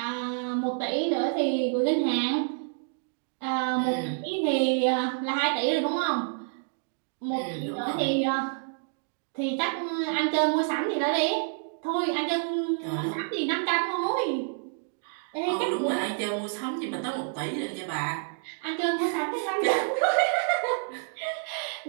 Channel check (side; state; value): left; silent; digital silence